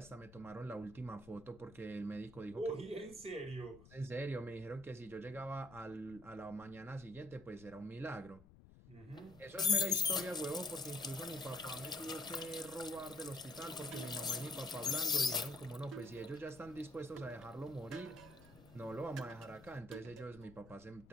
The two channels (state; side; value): noise; left; rumble, 20 dB below the sound